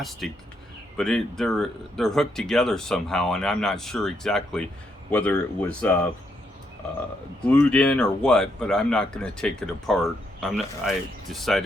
but they're hooked together somehow, and I'm not sure exactly whether it was glued in or what. But I'm not going to take it apart. I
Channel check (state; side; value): normal; both; correlation 0.77